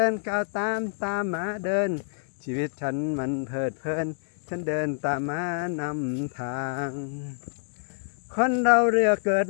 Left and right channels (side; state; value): right; silent; digital silence